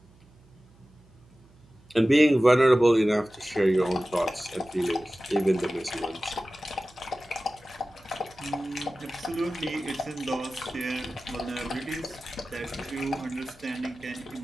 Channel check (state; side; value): noise; right; hum, 27 dB below the sound